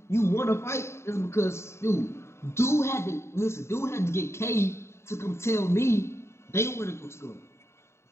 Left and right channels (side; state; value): right; late; 0.13 ms